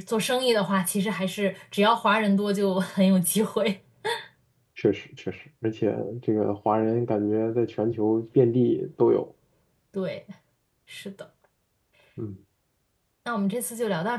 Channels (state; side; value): identical; both; correlation 1.00